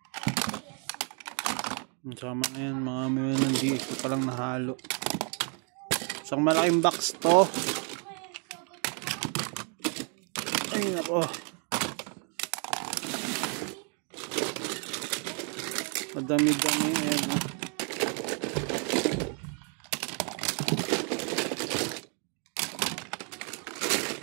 Sama na yan, mga may nandito palang nahalo. Isang malaking box to. Ay nako, madami-dami yan.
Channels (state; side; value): quieter; left; 39.2 dB